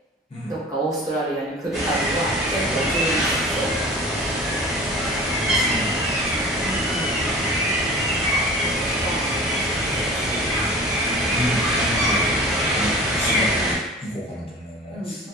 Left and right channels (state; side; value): normal; both; correlation 0.39